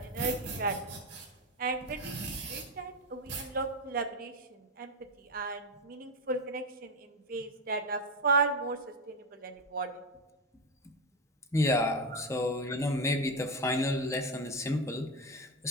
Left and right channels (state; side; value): normal; both; correlation 0.14